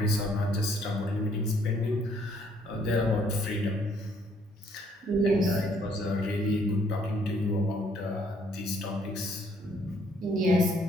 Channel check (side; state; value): both; normal; correlation 0.65